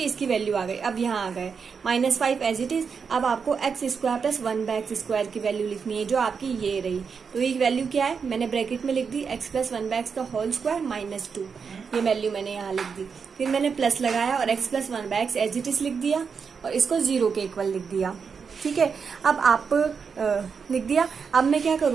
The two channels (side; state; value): left; quieter; 5.9 dB